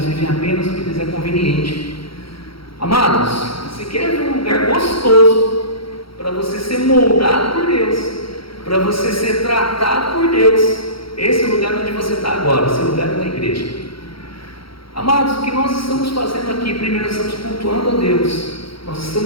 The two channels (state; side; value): late; right; 0.75 ms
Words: vivem apenas o que lhes é conveniente. Amados, você quer ver um lugar gostoso para você ser moldado por Deus, para você ser tratado por Deus? Esse é o lugar onde você está agora, esse lugar é na igreja. Amados, o que nós estamos fazendo aqui? Primeiro, nós estamos cultuando a Deus, nós